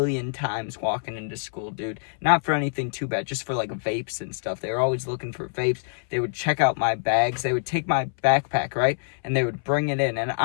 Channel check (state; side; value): silent; right; 61 dB below the other